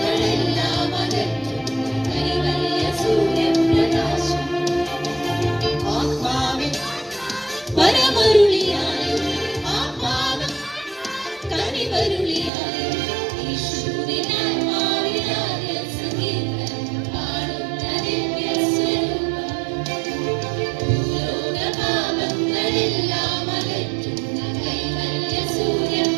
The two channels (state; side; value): drops out; left; at 12.5 s